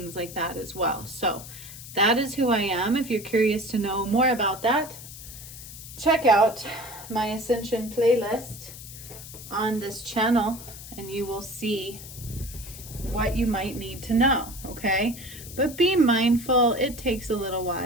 like that as well. So that is who I am. If you're curious to know more about that, check out my Ascension playlist on this channel and you will see what you might need to know, okay? But be mindful, it takes a little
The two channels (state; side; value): noise; left; hiss, 14 dB below the sound